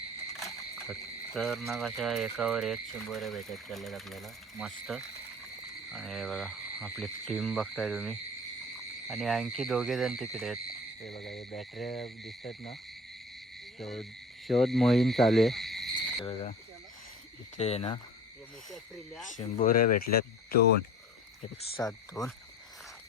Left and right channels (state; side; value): normal; both; correlation 0.42